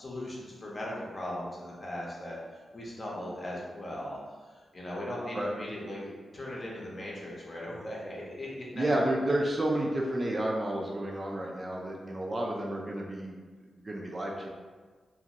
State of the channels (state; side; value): normal; both; correlation 0.91